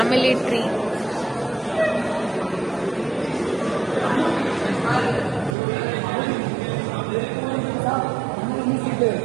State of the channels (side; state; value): left; drops out; at 5.6 s